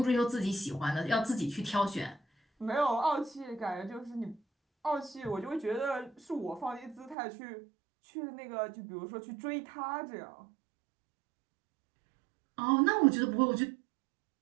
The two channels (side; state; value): left; drops out; at 7.2 s